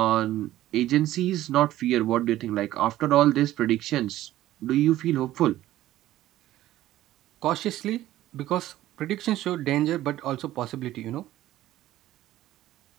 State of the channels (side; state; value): left; quieter; 14.4 dB